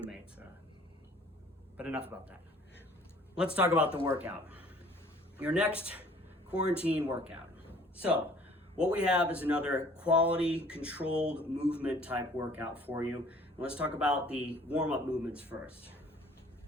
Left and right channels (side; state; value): both; normal; correlation 0.54